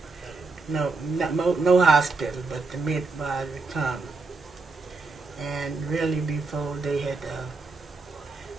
no hospital, but the midwives would come. And really before they had,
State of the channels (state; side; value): quieter; left; 3.9 dB